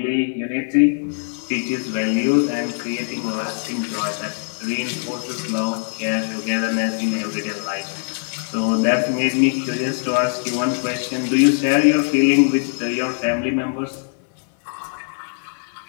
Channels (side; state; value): right; silent; 55 dB below the other